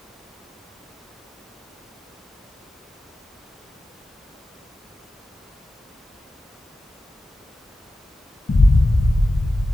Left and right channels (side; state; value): both; normal; correlation 0.94